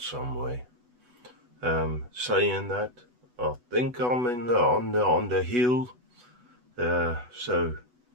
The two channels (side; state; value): left; late; 8.2 ms